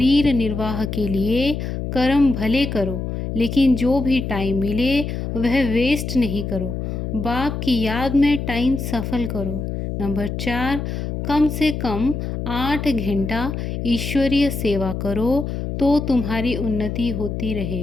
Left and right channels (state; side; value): noise; left; hum, 4 dB below the sound